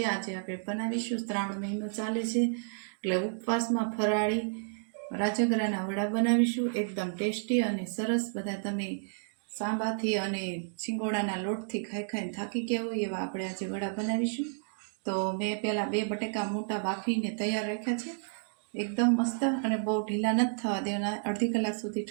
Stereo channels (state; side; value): silent; left; digital silence